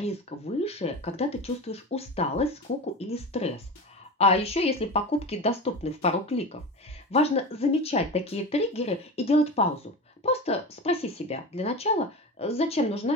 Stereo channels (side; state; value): both; normal; correlation 0.26